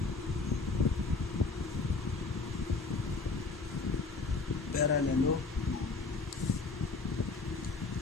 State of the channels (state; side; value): quieter; right; 4.0 dB